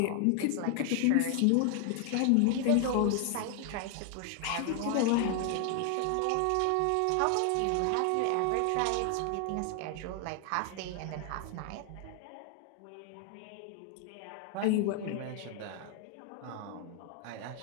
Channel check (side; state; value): both; different; correlation 0.00